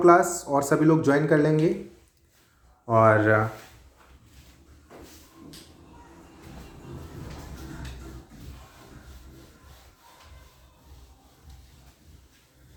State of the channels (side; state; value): both; identical; correlation 1.00